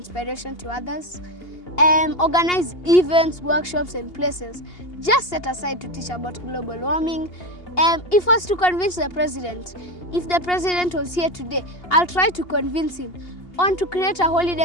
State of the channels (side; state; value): right; late; 2.8 ms